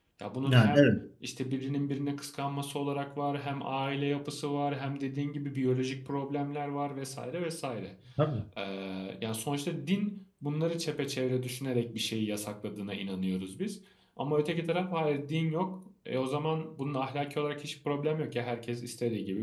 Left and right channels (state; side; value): identical; both; correlation 1.00